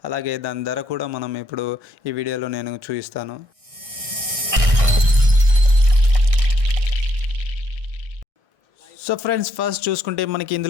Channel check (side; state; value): left; late; 1.6 ms